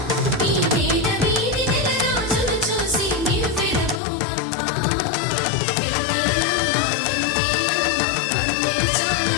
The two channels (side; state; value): right; drops out; at 4.0 s